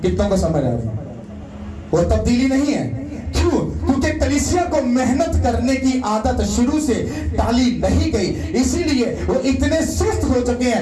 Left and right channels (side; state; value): both; identical; correlation 1.00